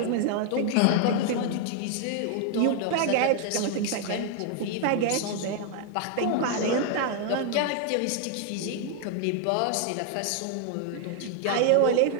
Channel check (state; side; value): different; both; correlation 0.00